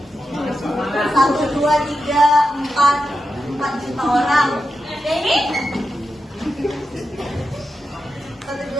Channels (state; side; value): normal; both; correlation 0.89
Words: 1, 2, 3, 4 juta orang. Yang ini? 1,